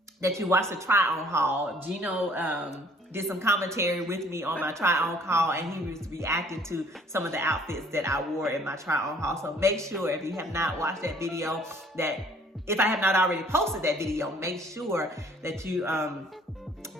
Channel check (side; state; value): both; normal; correlation 0.57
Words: that you watch the try-on haul. Gino did some commentary with me on my try-on haul, and he was reacting to some of the outfits that I wore in my try-on haul. So make sure, if you have not watched that video, that if I have not already posted that video, make sure that you